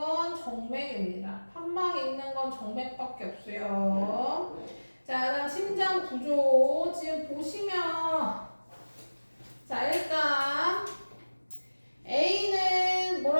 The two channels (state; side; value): inverted; both; correlation -1.00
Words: 정맥입니다. 판막이 있는 건 정맥밖에 없어요. 자, 그다음 심장 구조 지금 보시면 자 일단 A는